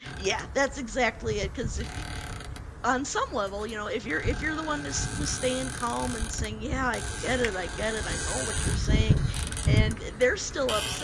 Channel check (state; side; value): identical; both; correlation 1.00